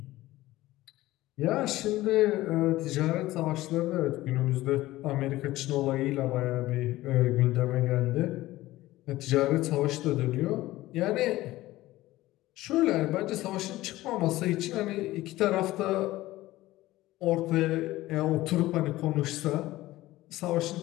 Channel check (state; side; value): quieter; right; 17.0 dB